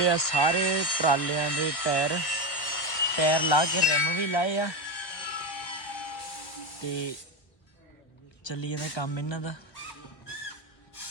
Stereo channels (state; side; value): late; right; 1.1 ms